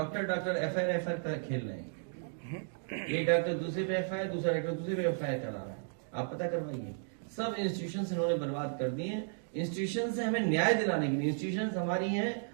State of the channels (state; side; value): silent; left; digital silence